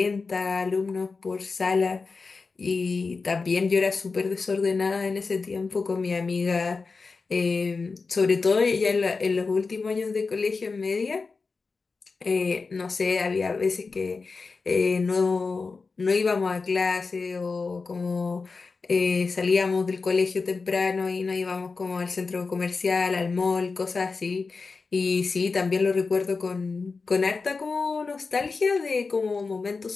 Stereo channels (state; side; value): quieter; right; 4.4 dB